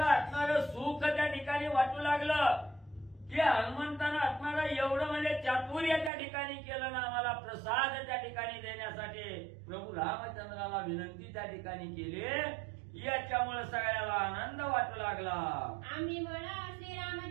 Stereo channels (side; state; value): left; drops out; at 6.1 s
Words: असणारं सुख त्या ठिकाणी वाटू लागलं की हनुमंतानं असणारं एवढं म्हणजे चातुर्य त्या ठिकाणी केलं ना आम्हाला प्रसाद त्या ठिकाणी देण्यासाठी प्रभू रामचंद्राला विनंती त्या ठिकाणी केली। याच्यामुळे सगळ्याला आनंद वाटू लागला। आम्ही म्हणा